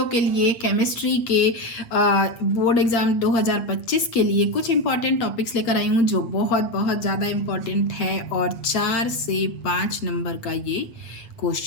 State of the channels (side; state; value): right; late; 8.5 ms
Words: के लिए केमिस्ट्री के बोर्ड एग्ज़ाम 2025 के लिए कुछ इंपॉर्टेंट टॉपिक्स लेकर आई हूँ जो बहुत बहुत ज़्यादा इम्पॉर्टेंट है और 4 से 5 नंबर का ये